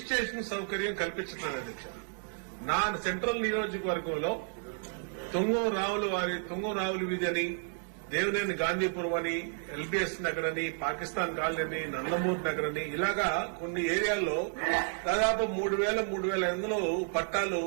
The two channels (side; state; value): left; silent; 57 dB below the other